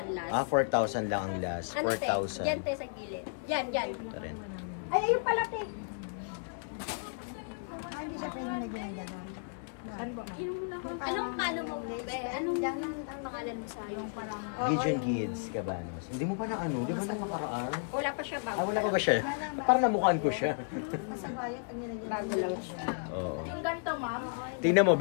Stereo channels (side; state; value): right; silent; digital silence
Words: last. 4,000 lang ang last. Ano tayo? 4,000. Yan tayo sa gilid. Yan. Ito rin. Ay, ayun pala, te. Hindi siya pwede na ginagano. Anong palo mo, be? Anong pangalan mo sa yung parang... Gideon Gids, Cabanos. Hindi mo pa na ano? Di ba nung nakaraan? Wala pa siya bago. Ah, wala pa ba siya? Parang namukhaan ko siya. Masagayan pag nilagyan. Bago lang siya. Oo. Yung ganito, ma'am. Tingnan mo,